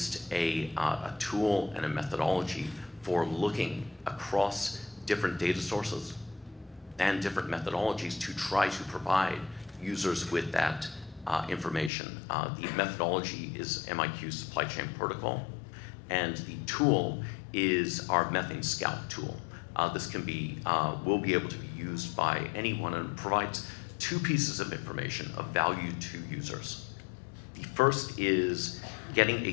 a tool and a methodology for looking across different data sources and different methodologies to try to provide users with that information. The methodology is MIQ's supply chain protocol, and the tool is our Methane Scout tool. This can be, will be able to be used by anyone, and provides two pieces of information of value to users. The first is getting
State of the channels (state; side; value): drops out; right; at 11.9 s